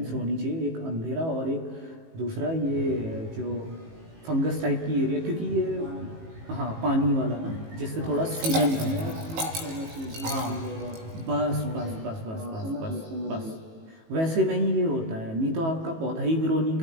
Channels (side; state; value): left; late; 18 ms